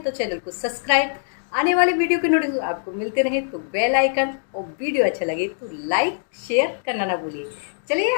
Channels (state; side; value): silent; right; digital silence